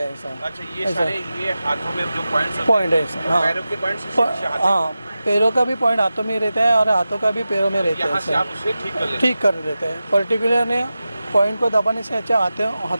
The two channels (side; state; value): both; inverted; correlation -0.94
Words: है ऐसा। अच्छा, ये सारे ये हाथों में जो पॉइंट है ऐसा। हाँ, पैरों के पॉइंट्स? हाँ, पैरों का भी पॉइंट हाथों में रहता है और हाथों का भी पैरों में रहता यहाँ से है, आप उसे ठीक कर लेते हैं? ठीक कर देते हैं। पर्टिकुलर ने पॉइंट को दबाने से अच्छा